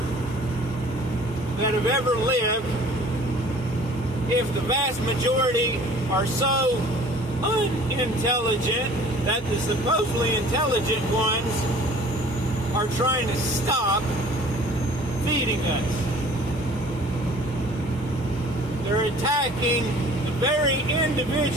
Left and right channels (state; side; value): normal; both; correlation 0.49